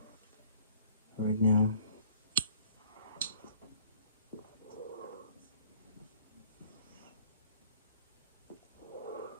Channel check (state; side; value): inverted; both; correlation -0.54